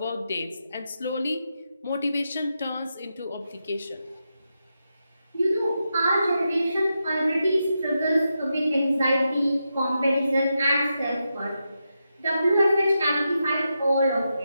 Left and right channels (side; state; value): both; inverted; correlation -0.87